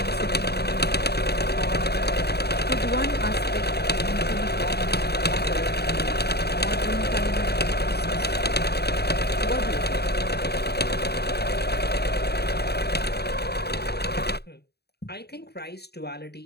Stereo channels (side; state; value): right; late; 0.47 ms